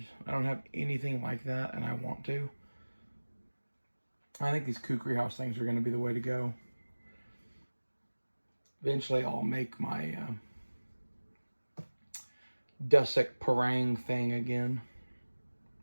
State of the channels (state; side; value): inverted; both; correlation -1.00